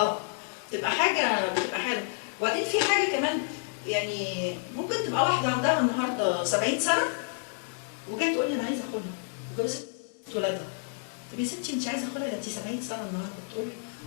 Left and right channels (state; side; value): silent; right; digital silence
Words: بتبقى حاله. وبعدين في حاجه كمان، يعني ممكن تبقى واحده عندها النهارده 70 سنه وجايه تقول لي انا عايزه خلع وجوزت ولادها. طب يا ستي انت عايزه خلع، ده انت 70 سنه النهارده، تقول لي